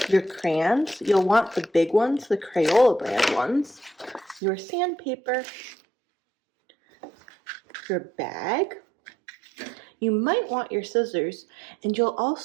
your crayons. You'll want the big ones, the Crayola brand ones, your sandpaper, your bag. You might want your scissors, and you'll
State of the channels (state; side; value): drops out; left; at 4.4 s